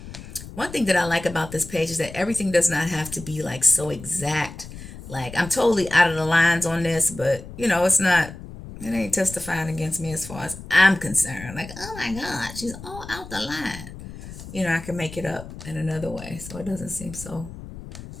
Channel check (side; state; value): left; noise; rumble, 13 dB below the sound